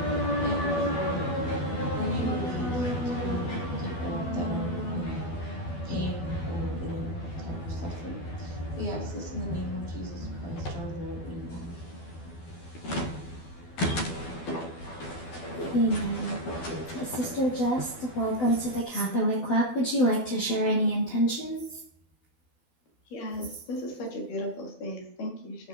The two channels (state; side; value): late; right; 12 ms